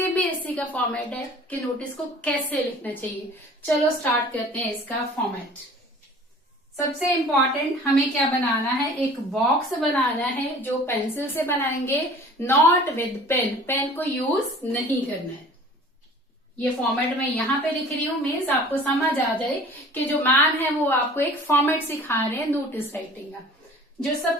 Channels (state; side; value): normal; both; correlation 0.46